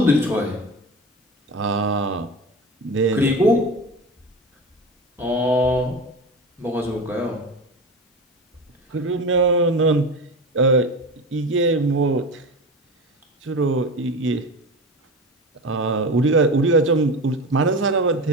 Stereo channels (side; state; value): both; normal; correlation 0.28